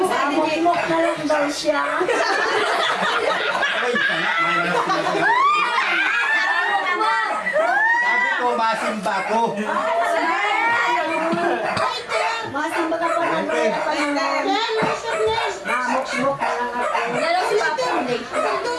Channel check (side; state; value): both; identical; correlation 1.00